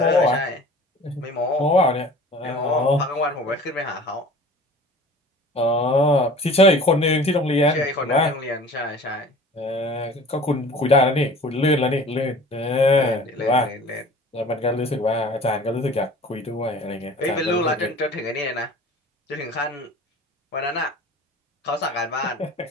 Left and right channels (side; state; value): both; normal; correlation 0.44